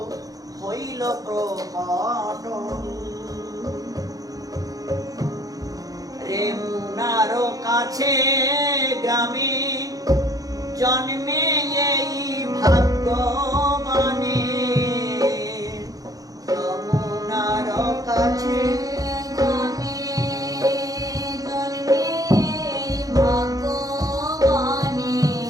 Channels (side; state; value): left; late; 0.17 ms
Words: হইল প্রকটন। রেমুনার কাছে গ্রামে জন্মে এই ভাগ্যবানে, যমুনার কাছে